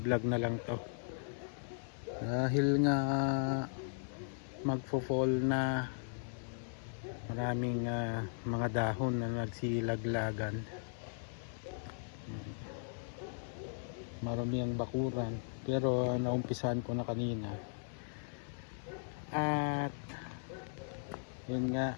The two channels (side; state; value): right; silent; 53 dB below the other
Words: na lang to. Dahil nga magfo-fall na, maraming mga dahon na nagsilaglagan. Marami ang bakuran, pero naumpisahan ko na kanina. At yun nga,